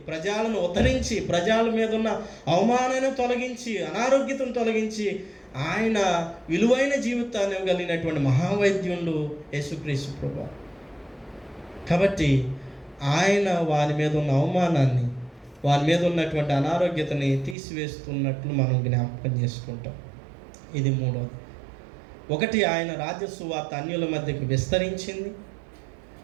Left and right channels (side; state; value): left; drops out; at 17.6 s